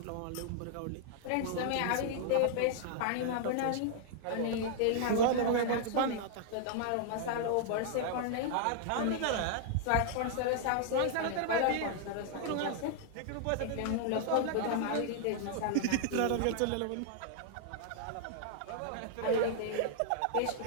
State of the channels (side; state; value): both; different; correlation -0.01